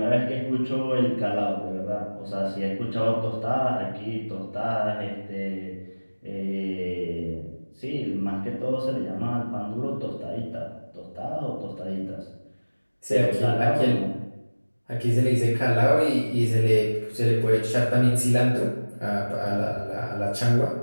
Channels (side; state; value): both; inverted; correlation -1.00